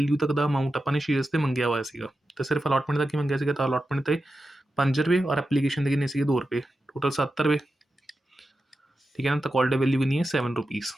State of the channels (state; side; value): normal; both; correlation 0.91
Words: तक का अमाउंट अपने शेयर्स से मंगया हुआ है, तो सिर्फ अलॉटमेंट तक ही मंगया सीगा, तो अलॉटमेंट से 5 रुपये और एप्लीकेशन के कितने सी 2 रुपये, टोटल 7 रुपये, ठीक है ना, तो कॉल्ड वैल्यू भी नहीं है 7 रुपीज़,